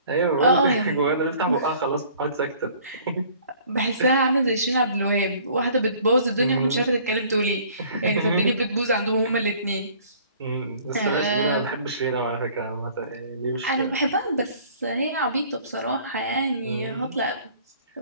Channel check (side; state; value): both; inverted; correlation -0.54